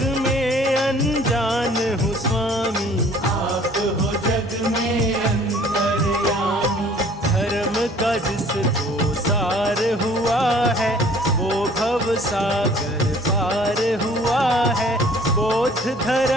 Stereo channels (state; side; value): normal; both; correlation 0.53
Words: में अनजान हूँ स्वामी, आप हो जग में अंतर्यामी। धर्म का जिसको सार हुआ है, वो भव सागर पार हुआ है, बोध